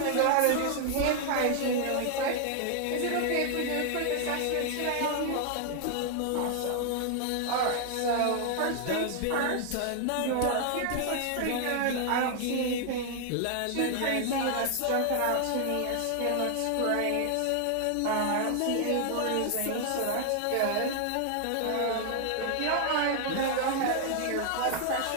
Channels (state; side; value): different; both; correlation 0.00